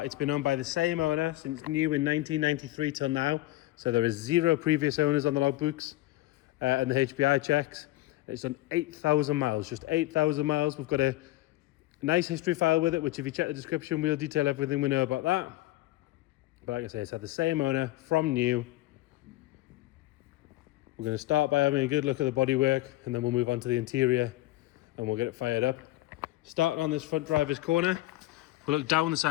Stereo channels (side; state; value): right; quieter; 17.4 dB